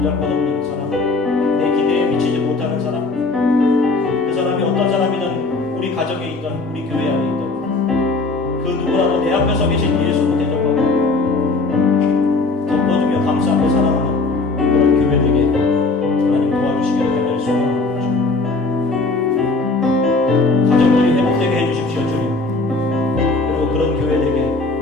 사람, 내 기대에 미치지 못하는 사람, 그 사람이 어떤 사람이든 우리 가정에 있던, 우리 교회 안에 있던 그 누구라도 내 앞에 서 계신 예수로 대접하고 덮어주며 감싸고 사랑하는 그런 교회 되게 하나님 도와주시기를 간절히 소원합니다. 가정들이 회복되게 해주십시오. 주님, 그리고 그런 교회 되게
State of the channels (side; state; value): right; quieter; 3.5 dB